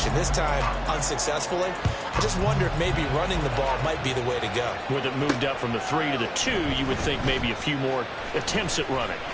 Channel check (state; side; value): identical; both; correlation 1.00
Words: This time, unsuccessfully. I just wonder if maybe running the ball might be the way to go. With it moved up from the 3 to the 2, you would think maybe a few more attempts at running.